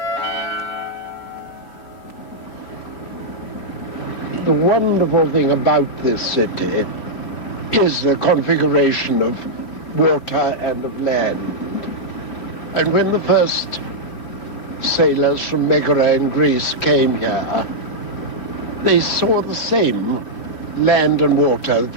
The wonderful thing about this city is the configuration of water and of land. And when the first sailors from Megara in Greece came here, they saw the same land and water that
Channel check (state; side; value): late; right; 4.0 ms